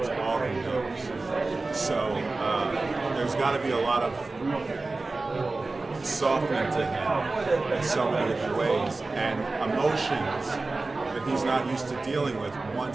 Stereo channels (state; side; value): quieter; left; 3.4 dB